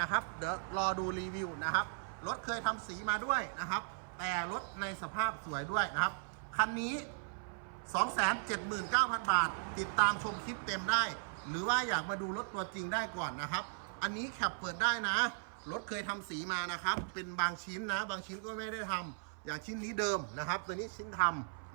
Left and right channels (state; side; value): silent; left; 53 dB below the other